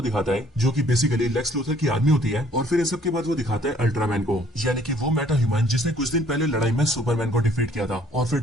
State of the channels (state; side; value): normal; both; correlation 0.60